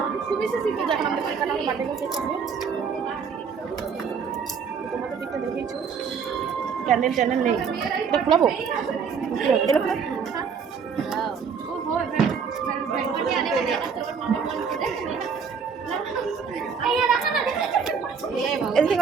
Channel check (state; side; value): quieter; left; 6.2 dB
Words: তোমাদের দিকটা দেখেছো, ক্যান্ডেল ট্যান্ডেল নেই, এটা খোলাবো।